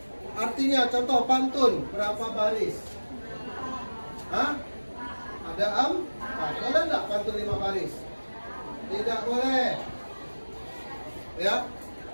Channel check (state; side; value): inverted; both; correlation -1.00